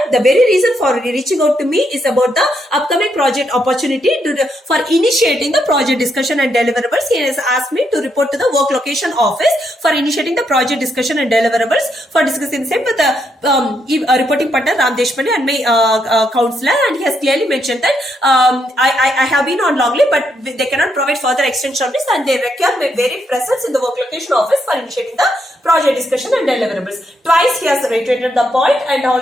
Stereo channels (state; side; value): normal; both; correlation 0.78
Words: the very reason for reaching out to me is about the upcoming project opportunity for initiating the project discussion and deliverables. He has asked me to report to the work location office for initiating the project discussion and deliverables, for discussing the same with the reporting partner Ram Deshpande and my counselor. And he has clearly mentioned that I have been on long leave, but they cannot provide further extension of this, and they require my very presence in the work location office for initiating the project discussion and deliverables. Twice he has reiterated the point and